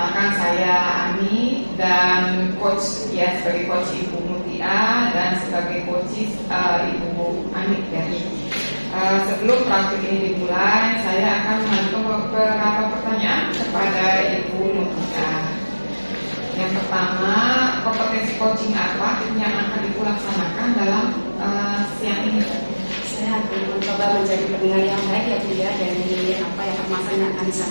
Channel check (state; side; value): inverted; both; correlation -1.00